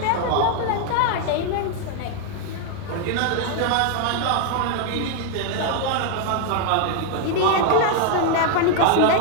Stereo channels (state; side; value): different; both; correlation 0.00